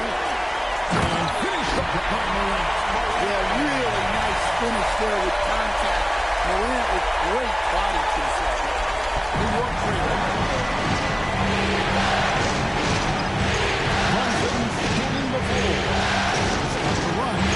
there with contact. Morant with great body control. New York freedom. Brunson's getting the ball. Starts to run.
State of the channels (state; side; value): identical; both; correlation 1.00